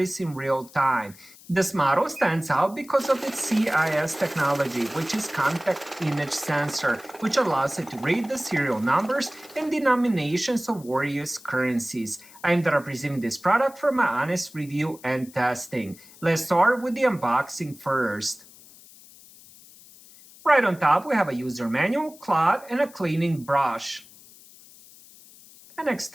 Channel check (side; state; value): left; noise; hiss, 22 dB below the sound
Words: in real time. This model stands out because of its CIS technology, which is contact image sensor, which allows it to read the serial numbers and denominations of various currencies. I ended up receiving this product for my honest review and testing. Let's start with the unboxing first. Right on top, we have a user manual, cloth, and a cleaning brush. An